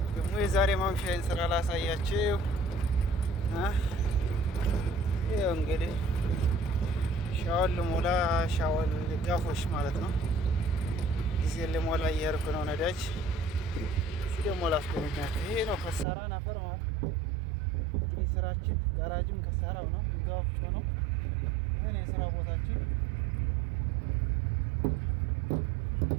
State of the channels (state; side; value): drops out; left; at 16.1 s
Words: ደግሞ የዛሬ ማምሻዬን ስራ ላሳያችሁ። ይኸው እንግዲህ ሻወል ልሞላ ሻወል ጋፎሽ ማለት ነው። ጊዜ ልሞላ እየሄድኩ ነው ነዳጅ። እዚህ ደግሞ ላስጎበኛችሁ። ይሄ ነው ከሳራን አፈር ማለት እንግዲህ ስራችን ጋራጅም ከሳራው ነው፣ ጋፍጮ ነው። ይሄን የስራ ቦታችን